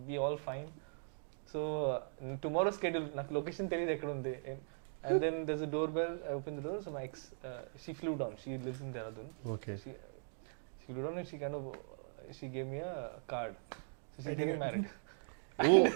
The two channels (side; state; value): left; silent; digital silence